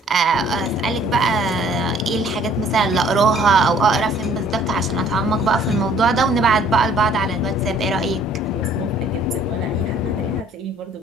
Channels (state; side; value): normal; both; correlation 0.58